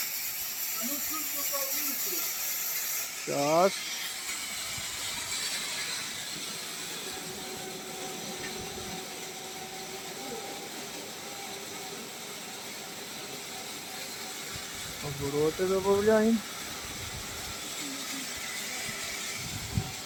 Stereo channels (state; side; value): identical; both; correlation 1.00